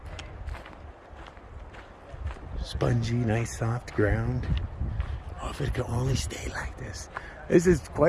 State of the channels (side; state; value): both; identical; correlation 1.00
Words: Spongy, nice soft ground. Oh, if it could only stay like this. This is